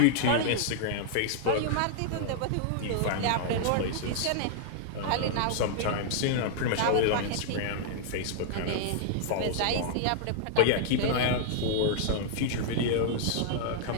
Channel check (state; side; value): different; both; correlation -0.01